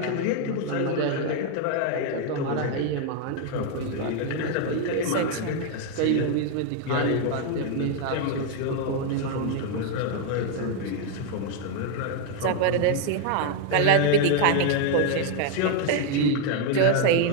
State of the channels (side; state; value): both; different; correlation 0.01